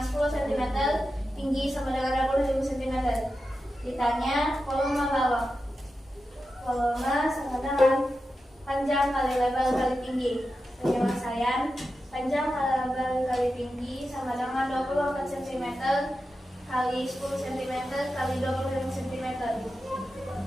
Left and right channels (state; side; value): normal; both; correlation 0.91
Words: cm, tinggi sama dengan 25 cm. Ditanya volume balok. Volume sama dengan panjang kali lebar kali tinggi. Penyelesaian panjang kali lebar kali tinggi sama dengan 24 cm kali 10 cm kali 25 cm